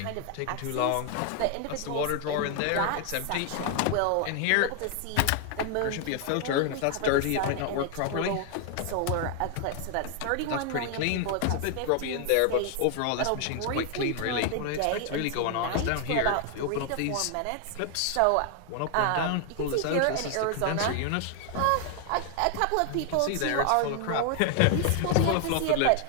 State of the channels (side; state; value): both; different; correlation 0.00